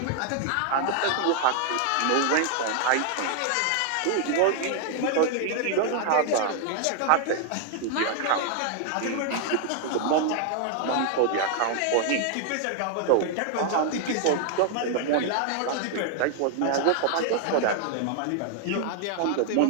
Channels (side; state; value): both; different; correlation 0.00